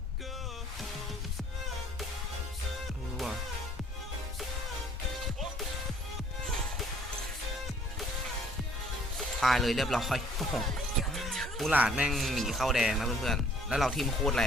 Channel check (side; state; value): both; normal; correlation 0.59